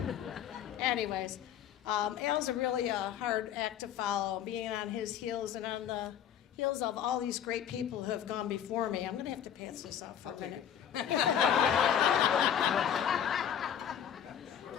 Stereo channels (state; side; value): quieter; right; 9.3 dB